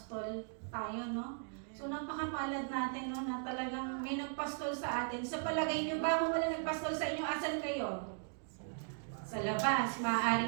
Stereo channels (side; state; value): left; silent; 53 dB below the other